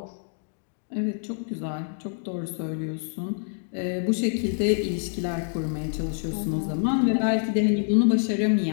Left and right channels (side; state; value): right; silent; digital silence